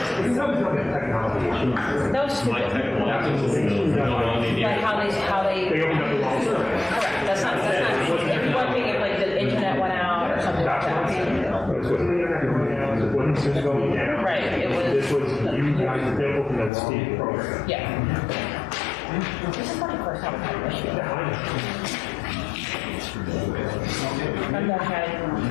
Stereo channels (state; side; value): drops out; right; at 16.7 s